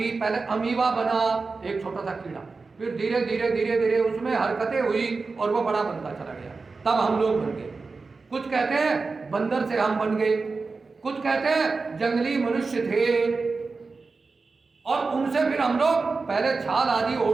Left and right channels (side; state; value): left; quieter; 4.2 dB